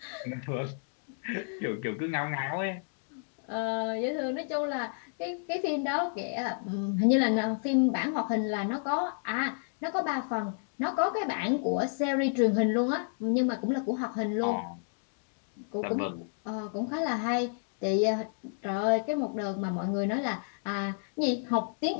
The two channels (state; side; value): silent; right; digital silence